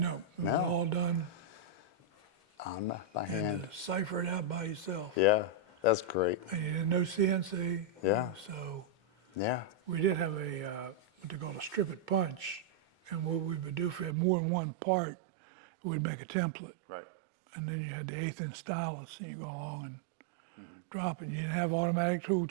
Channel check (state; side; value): drops out; left; at 14.2 s